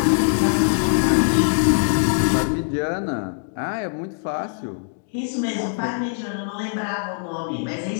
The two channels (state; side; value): silent; right; digital silence